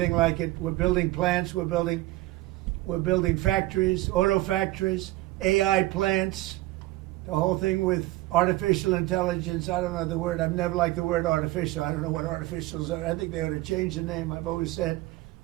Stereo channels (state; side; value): quieter; left; 18.3 dB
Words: like it. We're building plants. We're building factories, auto factories, AI plants, the whole thing with artificial intelligence. I don't know the word. I've never liked the word artificial. I don't know what artificials are. I think they ought to change the name. I've always said